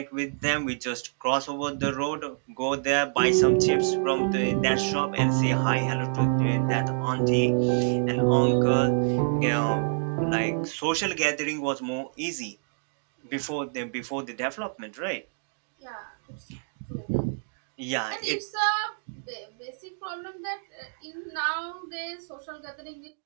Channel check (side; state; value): left; silent; digital silence